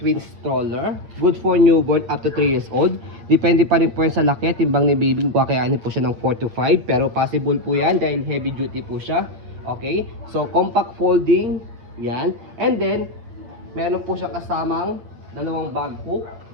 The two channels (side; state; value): left; late; 8.4 ms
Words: Twin Stroller. Good for newborn up to 3 years old. Depende pa rin po yan sa laki. Timbang ni baby, kakayanin po siya ng 4 to 5. Pero possible po yan dahil heavy duty po siya. Okay? So, compact folding. Yan. And then, meron po siya kasamang dalawang bag hook.